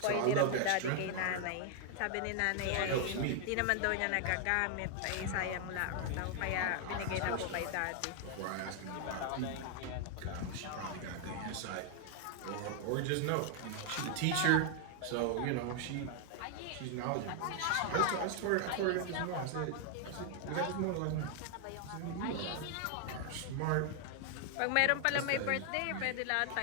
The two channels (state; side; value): different; both; correlation 0.00